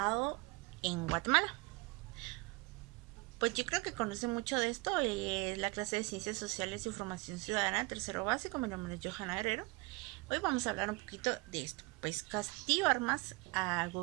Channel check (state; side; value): quieter; left; 25.0 dB